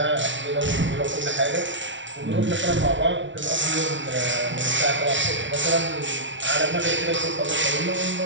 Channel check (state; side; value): late; left; 0.55 ms